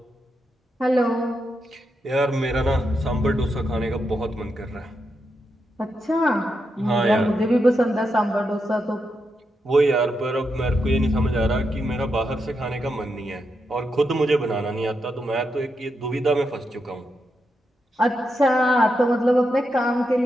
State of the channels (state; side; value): normal; both; correlation 0.84